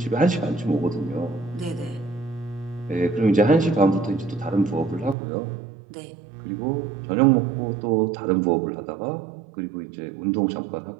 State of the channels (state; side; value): drops out; left; at 5.2 s